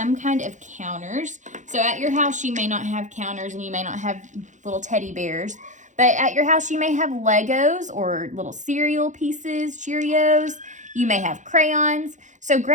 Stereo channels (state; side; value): late; left; 0.35 ms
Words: kind of counters. So at your house, you may not have counters and you may not have little teddy bears. But at your house, you may have Legos or little cereal pieces, Cheerios. You may have crayons. So